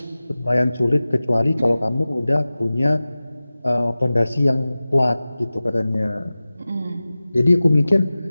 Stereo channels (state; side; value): inverted; both; correlation -0.97